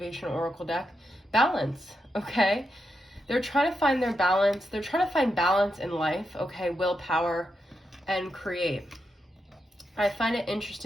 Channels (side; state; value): both; normal; correlation 0.85